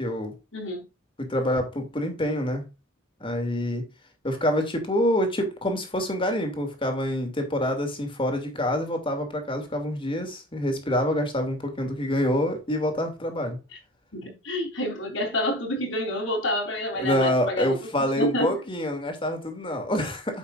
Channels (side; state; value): both; normal; correlation 0.43